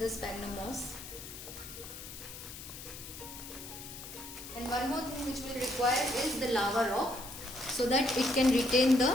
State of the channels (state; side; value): noise; left; hiss, 12 dB below the sound